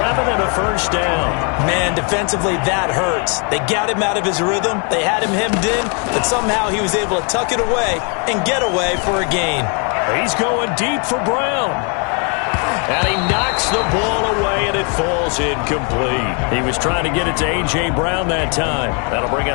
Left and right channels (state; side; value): quieter; right; 37.2 dB